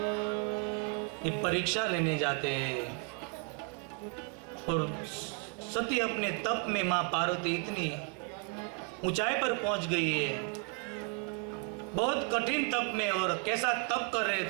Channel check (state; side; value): quieter; left; 33.3 dB